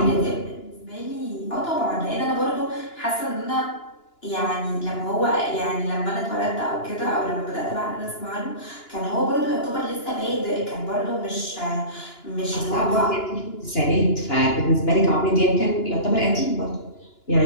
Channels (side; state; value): right; late; 2.9 ms